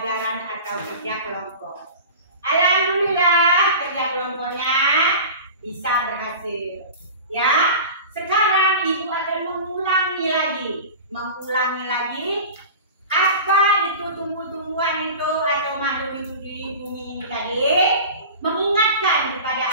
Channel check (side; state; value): both; inverted; correlation -0.35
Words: atau kerja kelompok. Alhamdulillah kerja kelompoknya bisa berhasil. Ya, sekarang ibu akan mengulangi lagi apa itu tumbuh-tumbuhan itu atau makhluk hidup di bumi ini tadi. Mengingatkan kepada